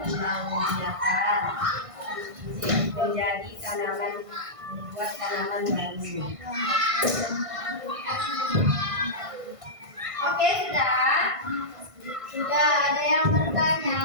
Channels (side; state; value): left; late; 1.5 ms